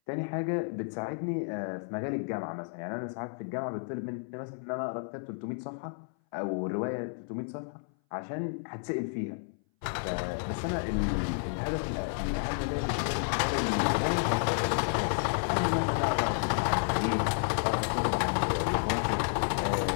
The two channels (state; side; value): silent; right; 57 dB below the other